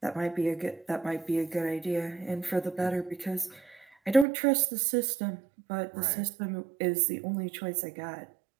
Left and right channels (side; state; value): left; drops out; at 4.2 s